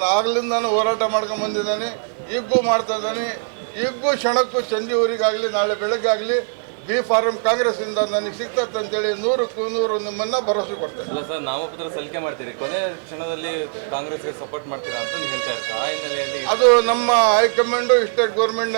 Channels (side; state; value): left; silent; digital silence